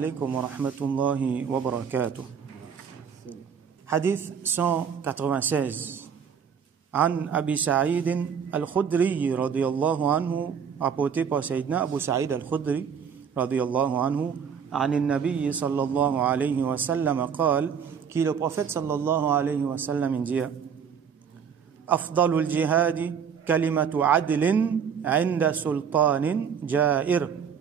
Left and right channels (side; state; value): left; quieter; 7.2 dB